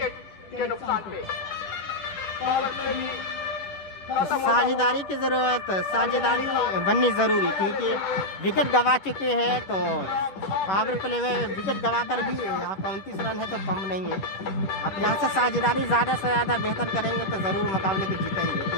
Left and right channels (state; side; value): late; right; 10 ms